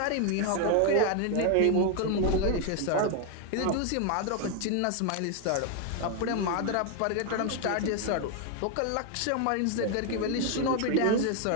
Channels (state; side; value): different; both; correlation 0.01